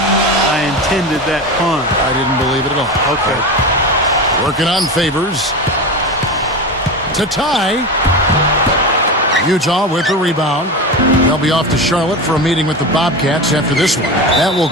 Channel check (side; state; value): both; normal; correlation 0.24